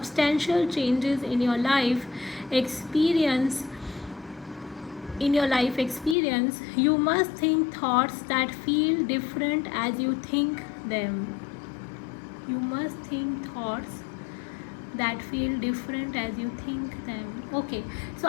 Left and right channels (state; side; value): drops out; right; at 6.2 s